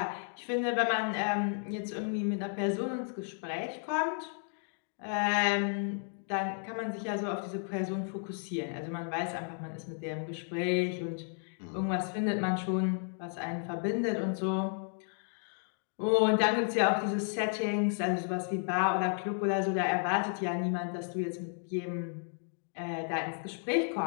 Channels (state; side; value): silent; right; 56 dB below the other